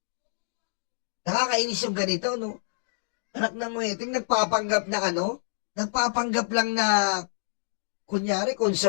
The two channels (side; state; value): right; silent; digital silence